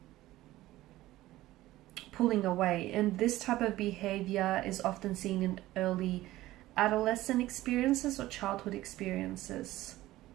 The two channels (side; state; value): left; quieter; 16.3 dB